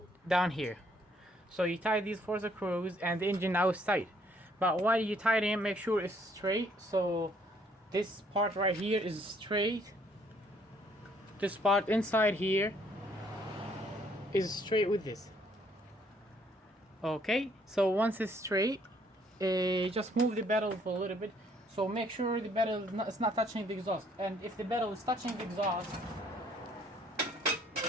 down here. So you tie these 4 screws and the engine now is tight. But while you tie them, make sure it's straight. So this part right here is straight. This part inside here is straight with this. Okay, so once it's straight, just move the pedal for a little bit. So make sure the pedal is not touching the exhaust. And if the pedal is touching the exhaust,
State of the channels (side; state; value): both; normal; correlation 0.65